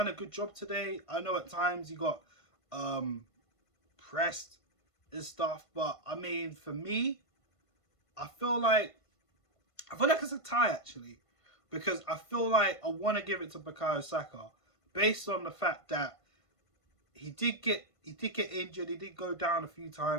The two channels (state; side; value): late; right; 1.5 ms